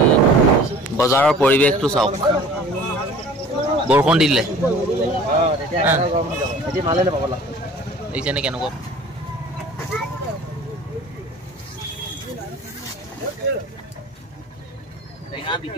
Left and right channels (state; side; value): normal; both; correlation 0.46